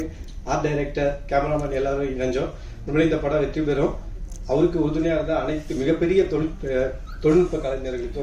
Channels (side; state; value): both; identical; correlation 1.00